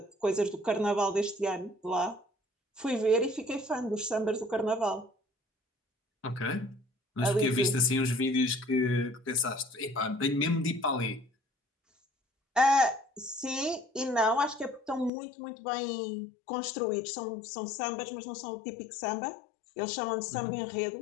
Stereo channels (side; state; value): right; drops out; at 15.1 s